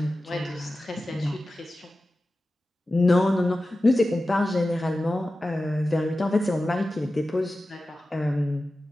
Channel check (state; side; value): normal; both; correlation 0.94